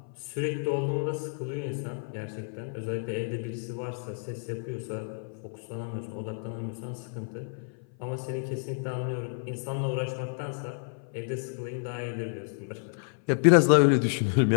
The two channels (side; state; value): right; silent; 55 dB below the other